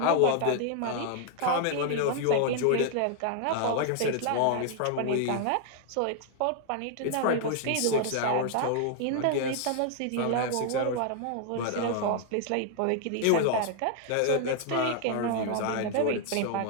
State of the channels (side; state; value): both; different; correlation 0.00